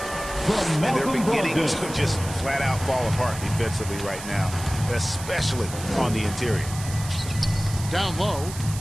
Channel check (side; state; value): right; noise; hiss, 12 dB below the sound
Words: And they're beginning to just flat out fall apart defensively right now, especially on the interior. Down low.